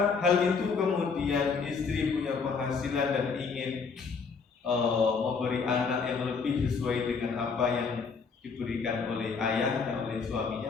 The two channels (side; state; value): right; quieter; 5.2 dB